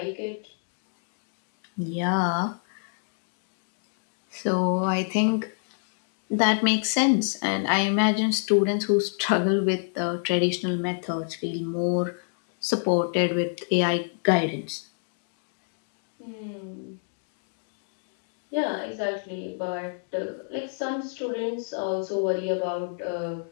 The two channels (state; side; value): silent; right; digital silence